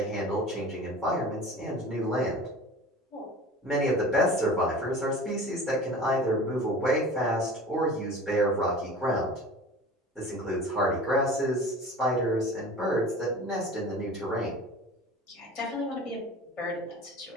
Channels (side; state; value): both; normal; correlation 0.39